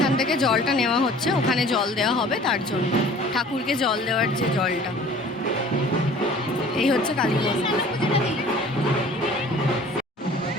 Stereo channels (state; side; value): normal; both; correlation 0.48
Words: থেকে জলটা নেওয়া হচ্ছে, ওখানে জল দেওয়া হবে, তার জন্য ঠাকুরকে জল দেওয়ার যে জলটা। এই হচ্ছে কালী মন্দির।